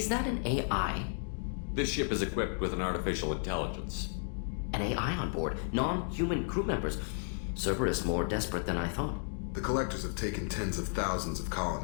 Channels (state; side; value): silent; right; 56 dB below the other